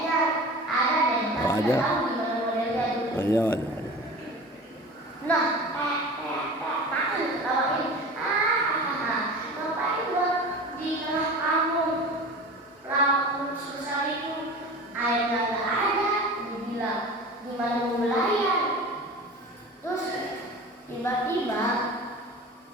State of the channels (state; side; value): normal; both; correlation 0.36